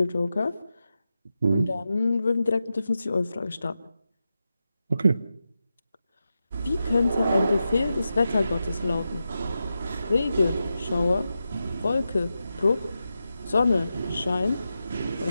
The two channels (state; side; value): inverted; both; correlation -0.90